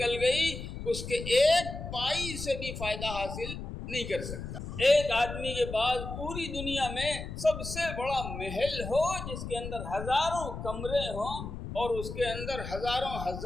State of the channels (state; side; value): noise; left; rumble, 8 dB below the sound